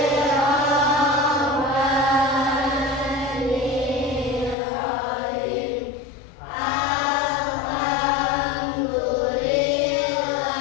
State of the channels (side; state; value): right; drops out; at 4.5 s